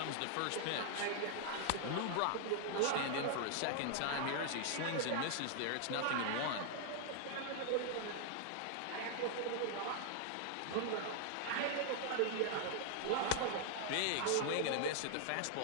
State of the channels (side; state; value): both; different; correlation 0.00